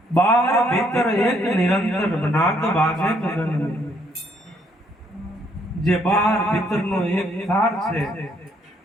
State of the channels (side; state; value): both; normal; correlation 0.69